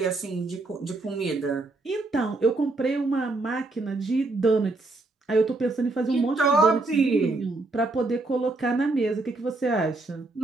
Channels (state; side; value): quieter; left; 3.2 dB